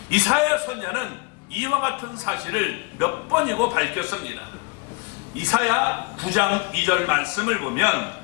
이사야 선지자는 이와 같은 사실을 몇 번이고 밝혔습니다. 이사야 9장 2절 말씀을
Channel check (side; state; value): right; quieter; 28.0 dB